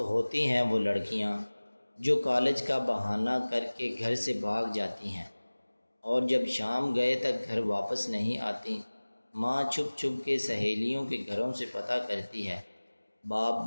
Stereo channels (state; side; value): inverted; both; correlation -1.00